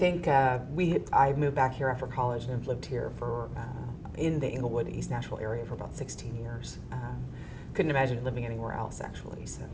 I moved back here after college and have lived here for in the Englewood, East Nashville area for about 16 years. Couldn't imagine living anywhere else, actually. So.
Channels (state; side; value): identical; both; correlation 1.00